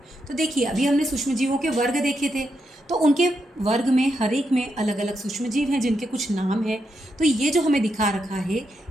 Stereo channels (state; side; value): normal; both; correlation 0.82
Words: तो देखिए, अभी हमने सूक्ष्म जीवों के वर्ग देखे थे, तो उनके वर्ग में हर एक में अलग अलग सूक्ष्म जीव हैं जिनके कुछ नाम हैं। तो ये जो हमें दिखा रखा है,